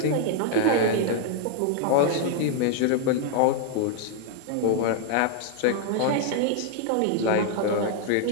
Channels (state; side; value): different; both; correlation 0.00